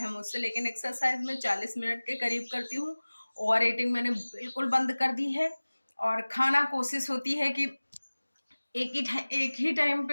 मुझसे। लेकिन एक्सरसाइज में 40 मिनट के करीब करती हूँ। ओवर ईटिंग मैंने बिल्कुल बंद कर दी है और खाना कोशिश होती है कि एक ही टाइम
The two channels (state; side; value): inverted; both; correlation -1.00